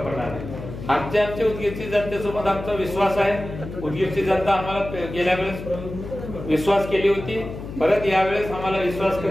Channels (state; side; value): noise; left; hum, 10 dB below the sound